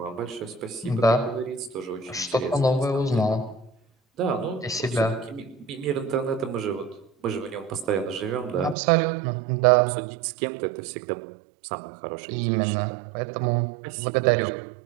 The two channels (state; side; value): drops out; left; at 8.8 s